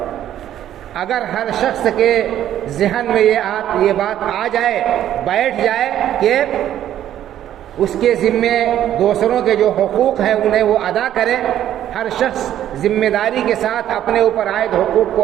اگر ہر شخص کے ذہن میں یہ بات آ جائے، بیٹھ جائے کہ اس کے ذمے دوسروں کے جو حقوق ہیں انہیں وہ ادا کرے، ہر شخص ذمہ داری کے ساتھ اپنے اوپر عائد حقوق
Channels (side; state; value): left; quieter; 11.5 dB